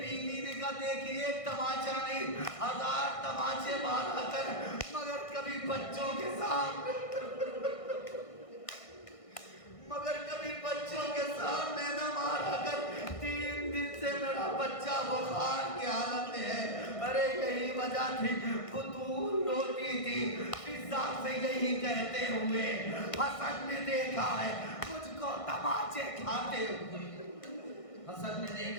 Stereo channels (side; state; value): right; late; 1.6 ms